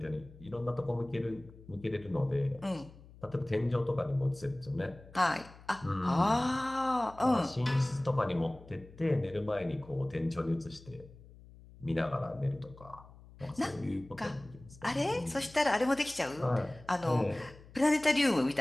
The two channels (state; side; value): noise; left; hum, 21 dB below the sound